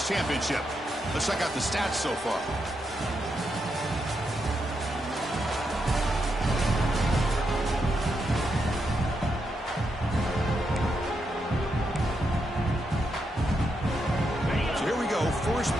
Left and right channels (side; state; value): both; normal; correlation 0.82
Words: championship. Let's check out the stats so far. First